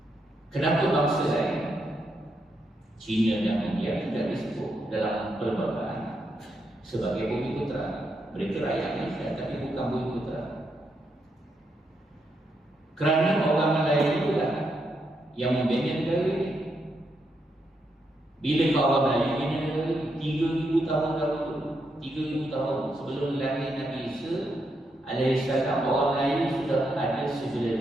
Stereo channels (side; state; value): both; normal; correlation 0.81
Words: Kenapa bangsa lain, China dan India, tidak disebut dalam perlembagaan sebagai Bumi Putra? Mereka rakyat Malaysia tapi bukan Bumi Putra. Kerana orang Melayu itulah yang membina negara ini. Bila orang Melayu bina negara ini 3,000 tahun dahulu, 3,000 tahun sebelum lahir Nabi Isa alaihissalam, orang Melayu sudah ada